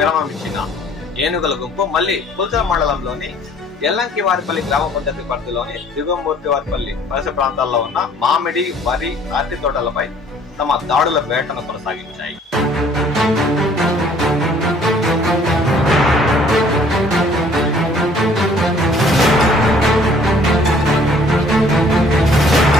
ఇచ్చిన ఏనుగుల గుంపు మళ్లీ పుల్చల మండలంలోని ఎల్లంకివారిపల్లి గ్రామ పంచాయతీ పరిధిలోని దిగువమూర్తివారిపల్లి పరిసర ప్రాంతాల్లో ఉన్న మామిడి, వరి, అరటి తోటలపై తమ దాడుల వేటను కొనసాగించాయి.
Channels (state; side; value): normal; both; correlation 0.57